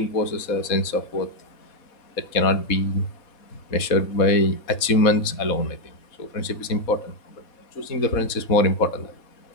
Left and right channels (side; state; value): right; late; 4.1 ms